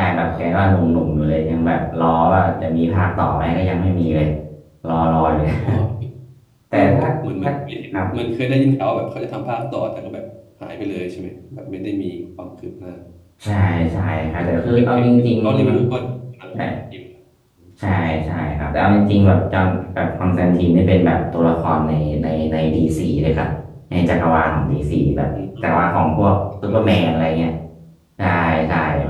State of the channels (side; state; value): both; identical; correlation 1.00